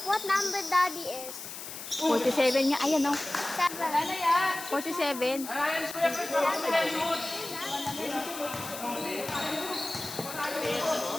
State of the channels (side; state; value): left; noise; hiss, 10 dB below the sound